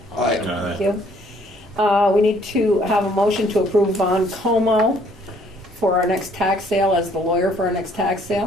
Aye. Thank you. We need to have a motion to approve Von Como for our next tax sale as the lawyer for our next tax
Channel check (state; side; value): normal; both; correlation 0.62